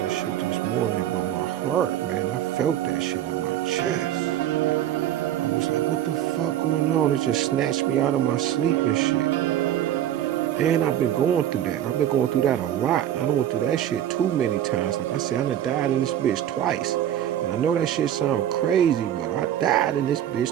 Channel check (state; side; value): quieter; left; 11.3 dB